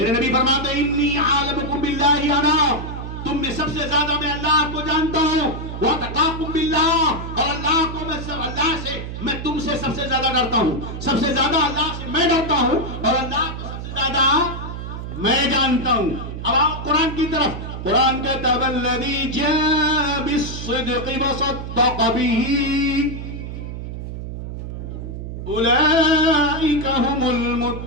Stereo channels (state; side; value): noise; right; hum, 7 dB below the sound